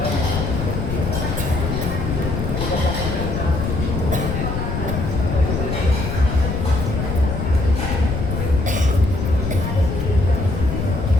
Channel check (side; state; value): left; noise; rumble, 2 dB below the sound